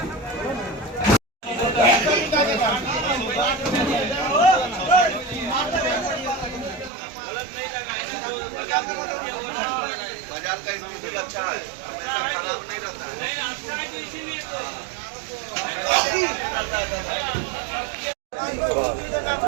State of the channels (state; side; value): drops out; left; at 6.9 s